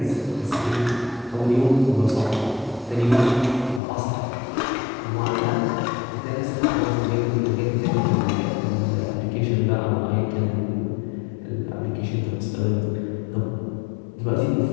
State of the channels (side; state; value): right; drops out; at 3.8 s